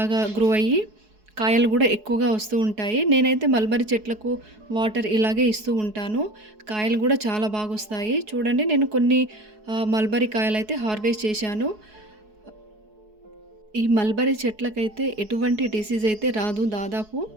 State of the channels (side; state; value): left; late; 4.7 ms